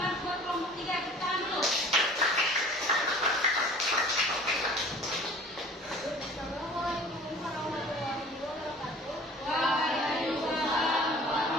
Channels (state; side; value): normal; both; correlation 0.47